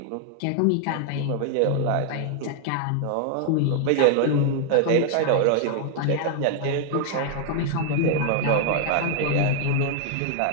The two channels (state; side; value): different; both; correlation 0.00